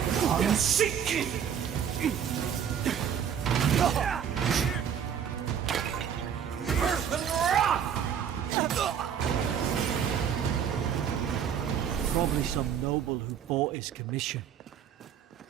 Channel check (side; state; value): left; quieter; 8.3 dB